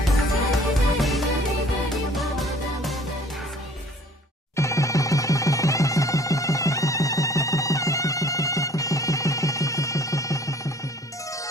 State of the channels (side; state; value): both; normal; correlation 0.53